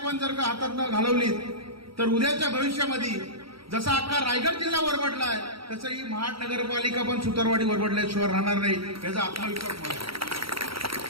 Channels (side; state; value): left; late; 0.75 ms